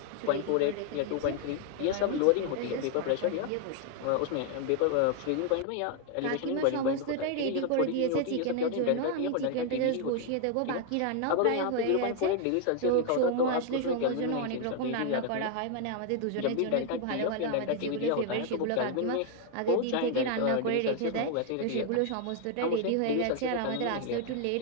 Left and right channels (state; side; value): different; both; correlation 0.00